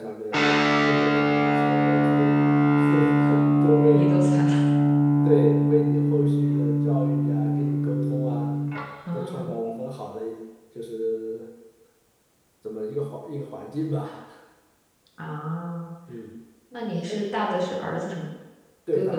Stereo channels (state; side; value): identical; both; correlation 1.00